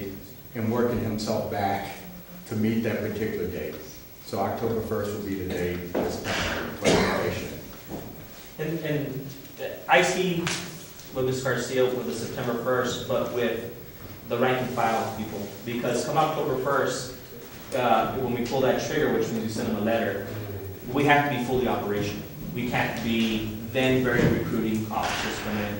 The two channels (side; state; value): both; identical; correlation 1.00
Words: and working himself back to meet that particular date. So October 1st will be the date that's planned. And I see with Ms. Garcia with the September 1st, but with the rank and file people, because come October 1st, when we pull that trigger, which means we send them a letter, we have to be fully operational. We can't be then very recruiting officers come